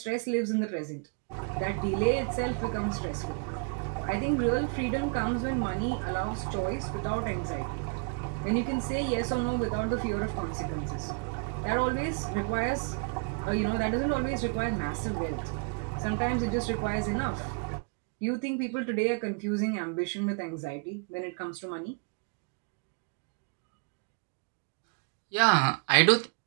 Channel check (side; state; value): left; quieter; 35.9 dB